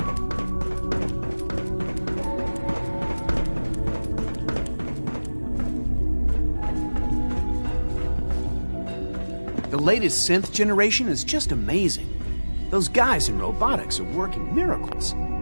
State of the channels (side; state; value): both; inverted; correlation -1.00